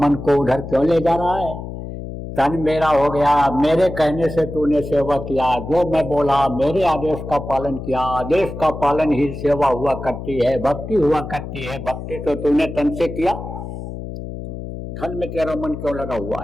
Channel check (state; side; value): noise; left; hum, 9 dB below the sound